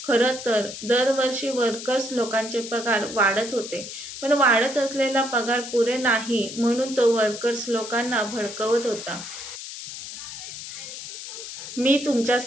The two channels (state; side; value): noise; left; hiss, 10 dB below the sound